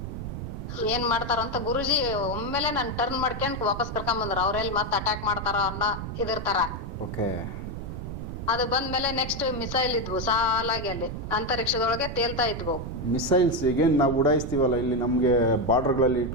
ಏನ್ ಮಾಡ್ತಾರ ಅಂತ ಗುರುಜಿ ಒಮ್ಮೆಲೆ ನನ್ ಟರ್ನ್ ಮಾಡ್ಕೊಂಡ್ ವಾಪಸ್ ಕರ್ಕೊಂಡ್ ಬಂದ್ರು. ಅವ್ರೆಲ್ಲಿ ಮತ್ ಅಟ್ಯಾಕ್ ಮಾಡ್ತಾರ ಅನ್ನೋ ಇದಿರ್ತಾರ. ಅದು ಬಂದ್ಮೇಲೆ ನೆಕ್ಸ್ಟ್ ಮಿಸೈಲ್ ಇದ್ವು ಸಾಲಾಗಿ ಅಲ್ಲಿ ಅಂತರಿಕ್ಷದೊಳಗೆ ತೇಲ್ತಾ ಇದ್ವು. ಮಿಸೈಲ್ಸ್ ಈಗ ನಾವು ಉಡಾಯಿಸ್ತೀವಲ್ಲ ಇಲ್ಲಿ ನಮ್ಗೆ ಬಾರ್ಡರ್ಗಳಲ್ಲಿ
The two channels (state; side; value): noise; right; rumble, 7 dB below the sound